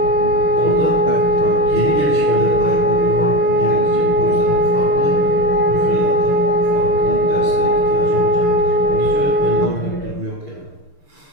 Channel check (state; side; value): late; right; 6.7 ms